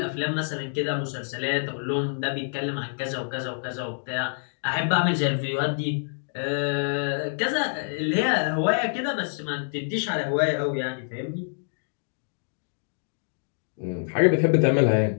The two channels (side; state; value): right; silent; digital silence